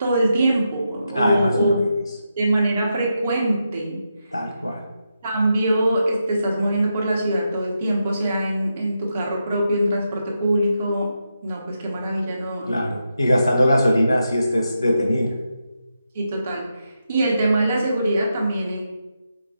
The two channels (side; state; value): both; inverted; correlation -0.85